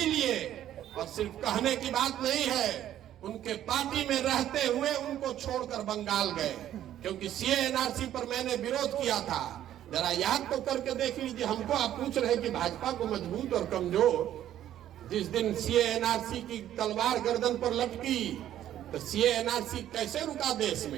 और सिर्फ कहने की बात नहीं है, उनके पार्टी में रहते हुए उनको छोड़कर बंगाल गए, क्योंकि सीए एनआरसी पर मैंने विरोध किया था। जरा याद तो करके देख लीजिए। हमको आप पूछ रहे कि भाजपा को मजबूत और कमजोर, जिस दिन सीए एनआरसी की तलवार गर्दन पर लटकी तो सीए एनआरसी कैसे रुका देश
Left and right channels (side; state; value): left; quieter; 11.7 dB